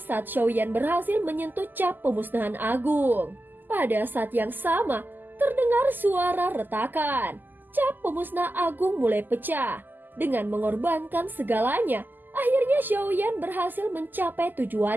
saat Xiaoyan berhasil menyentuh cap pemusnahan agung. Pada saat yang sama, terdengar suara retakan. Cap pemusnah agung mulai pecah. Dengan mengorbankan segalanya, akhirnya Xiaoyan berhasil mencapai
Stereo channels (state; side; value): late; left; 0.088 ms